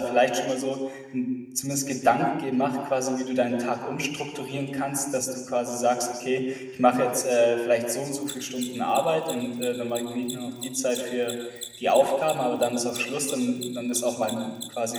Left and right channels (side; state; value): both; identical; correlation 1.00